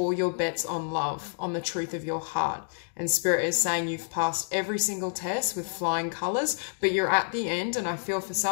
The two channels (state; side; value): silent; right; digital silence